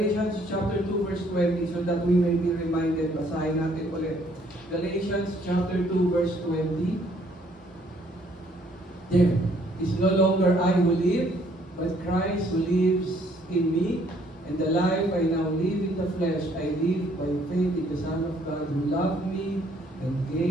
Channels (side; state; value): both; normal; correlation 0.64